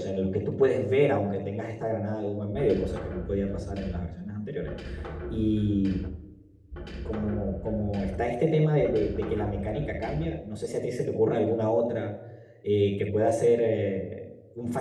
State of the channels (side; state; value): both; identical; correlation 1.00